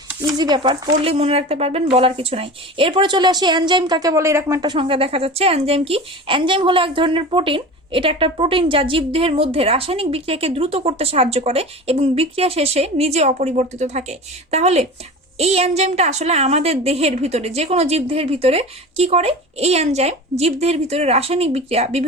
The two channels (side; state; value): both; normal; correlation 0.33